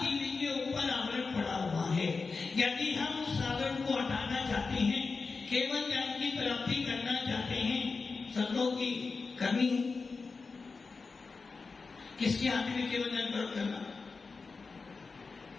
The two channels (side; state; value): right; quieter; 4.4 dB